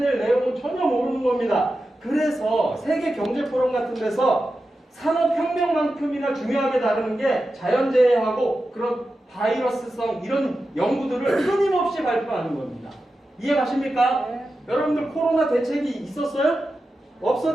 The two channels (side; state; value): both; normal; correlation 0.91